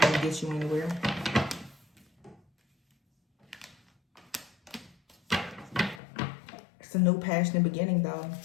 to get you anywhere. It's a new passionate beginning, though.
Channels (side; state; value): right; drops out; at 6.0 s